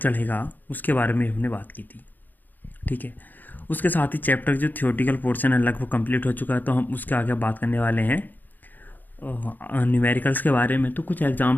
उसके बारे में हमने बात की थी। ठीक है, उसके साथ ही चैप्टर जो थियोरेटिकल पोर्शन है लगभग कंप्लीट हो चुका है, तो हम उसके आगे बात करने वाले हैं न्यूमेरिकल्स के बारे में। तो कुछ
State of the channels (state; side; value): late; right; 0.086 ms